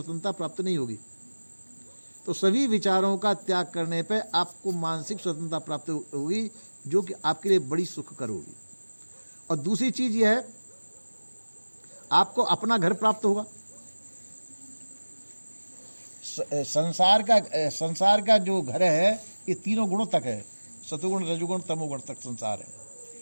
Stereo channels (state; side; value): inverted; both; correlation -1.00